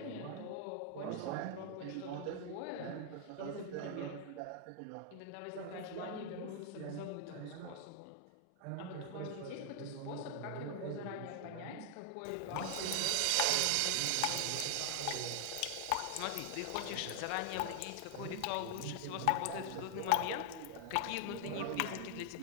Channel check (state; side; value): different; both; correlation 0.00